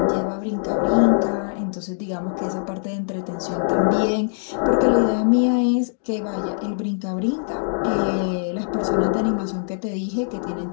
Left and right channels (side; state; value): right; silent; digital silence